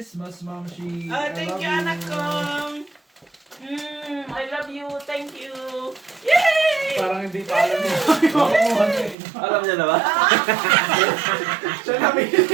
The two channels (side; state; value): left; drops out; at 9.2 s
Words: Mama Shi. Thank you, anak ko. I love you. Thank you. Yay! Parang hindi pa alam niya. Alam niya na ba? Siya na bili.